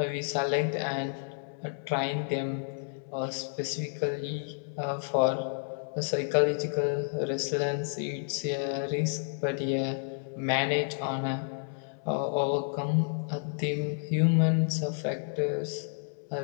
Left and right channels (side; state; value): right; silent; digital silence